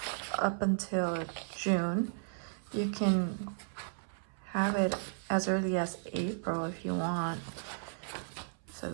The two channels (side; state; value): left; silent; 55 dB below the other